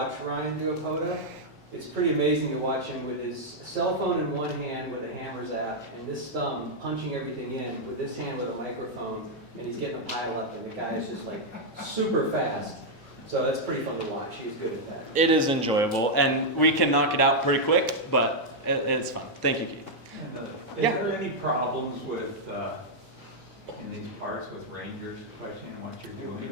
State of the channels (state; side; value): normal; both; correlation -0.03